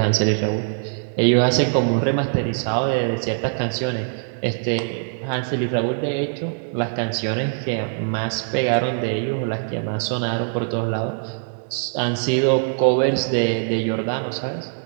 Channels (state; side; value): silent; left; 64 dB below the other